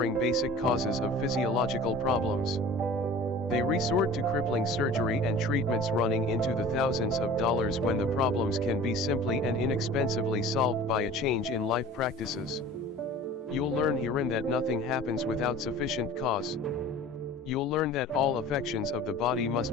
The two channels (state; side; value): normal; both; correlation 0.42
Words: basic causes of physiological problems. They resort to crippling surgery and treatments running into the thousands of dollars when the problems can be simply and inexpensively solved by a change in life practices. You'll learn herein that nothing happens without sufficient cause. You'll learn that all affections of the body